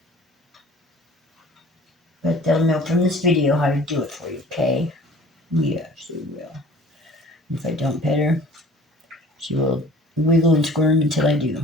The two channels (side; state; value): both; normal; correlation 0.48